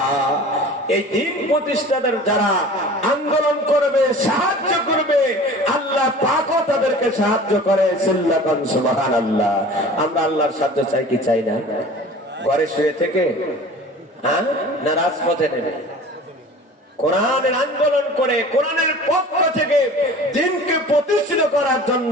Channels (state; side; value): normal; both; correlation 0.42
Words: এই দ্বীন প্রতিষ্ঠার যারা আন্দোলন করবে, সাহায্য করবে, আল্লাহ পাকও তাদেরকে সাহায্য করে। সিল্লাকান সুবহানাল্লাহ। আমরা আল্লাহর সাহায্য চাই কি চাই না? ঘরে শুয়ে থেকে না রাজপথে নেমে কোরআনের আন্দোলন করে, কোরআনের পক্ষ থেকে দ্বীনকে প্রতিষ্ঠিত করার